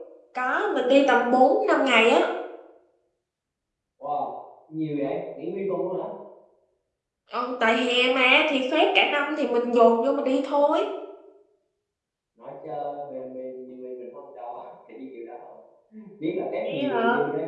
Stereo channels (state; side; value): identical; both; correlation 1.00